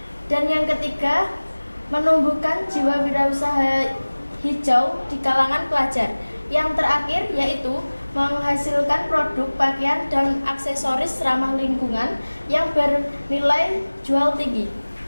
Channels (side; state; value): both; inverted; correlation -1.00